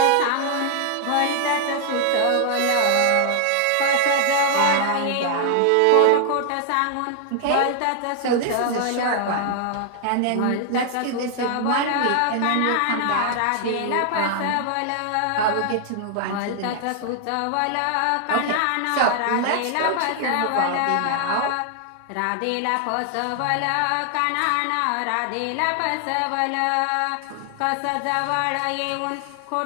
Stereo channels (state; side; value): different; both; correlation 0.00